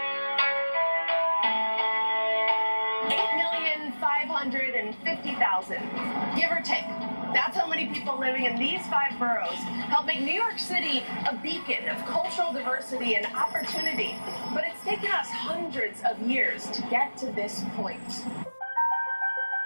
give or take. That's how many people living in these 5 boroughs help make New York City a beacon of cultural diversity and opportunity. But it's taken us hundreds of years to get to this point.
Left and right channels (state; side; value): inverted; both; correlation -1.00